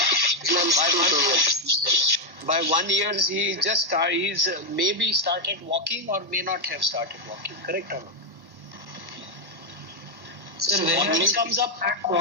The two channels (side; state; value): left; late; 1.1 ms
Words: By 1 year, he's maybe started walking or may not have started walking. Correct or not? Sir, when Squatting a comes up.